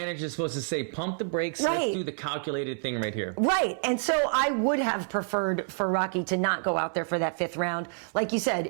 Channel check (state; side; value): silent; left; digital silence